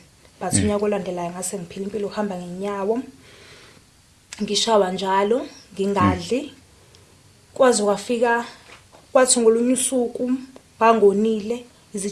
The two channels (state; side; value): identical; both; correlation 1.00